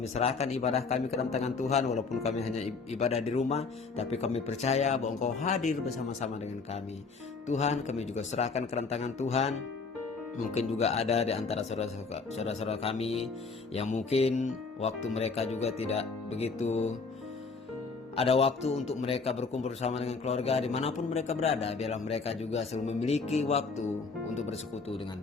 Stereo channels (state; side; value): quieter; right; 4.5 dB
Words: serahkan ibadah kami ke dalam tangan Tuhan, walaupun kami hanya ibadah di rumah, tapi kami percaya bahwa Engkau hadir bersama-sama dengan kami. Tuhan, kami juga serahkan ke dalam tangan Tuhan. Mungkin juga ada di antara saudara-saudara kami yang mungkin waktu mereka juga tidak begitu ada waktu untuk mereka berkumpul bersama dengan keluarga dimanapun mereka berada. Biarlah mereka juga selalu memiliki waktu untuk bersekutu